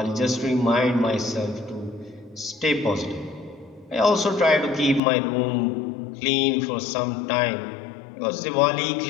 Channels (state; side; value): drops out; right; at 5.0 s